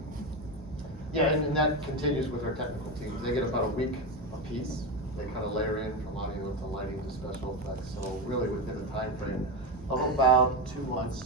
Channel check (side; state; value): both; normal; correlation 0.15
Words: Yeah, and that continues with our technical teams. They get about a week a piece. They kind of layer in from audio to lighting to special effects. So really within a time frame of about 2 months,